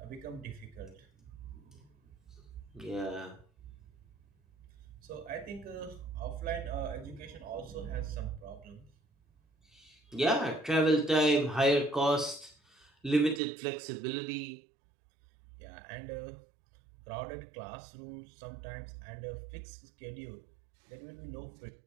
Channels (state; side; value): drops out; left; at 13.4 s